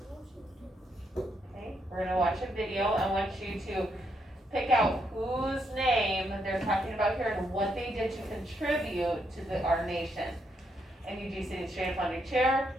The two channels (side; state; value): both; normal; correlation 0.78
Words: Okay, we're going to watch a video. I want you to pick out whose name they're talking about here and what they did to contribute to our nation. And you do sitting straight up on your chair.